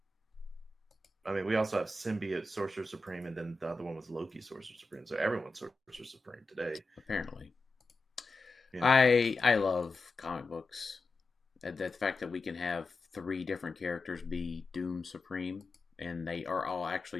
I mean, we also have Symbiote Sorcerer Supreme, and then the other one was Loki Sorcerer Supreme. So everyone's Sorcerer Supreme today. Apparently, Yeah. I love comic books. The fact that we can have 3 different characters be Doom Supreme, and they are all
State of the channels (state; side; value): quieter; right; 3.1 dB